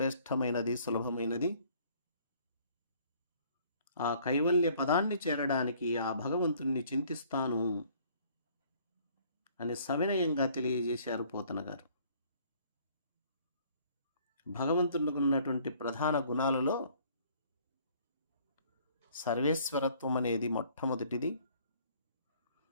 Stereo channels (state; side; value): inverted; both; correlation -0.58